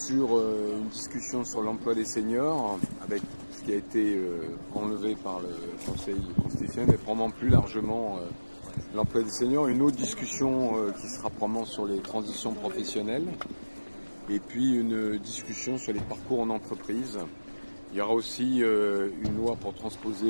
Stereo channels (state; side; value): inverted; both; correlation -1.00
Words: une discussion sur l'emploi des seniors, avec ce qui a été enlevé par le Conseil constitutionnel, et probablement plus largement l'emploi des seniors. Une autre discussion qui sera probablement sur les transitions professionnelles, et puis une discussion sur les parcours en entreprise. Il y aura aussi une loi pour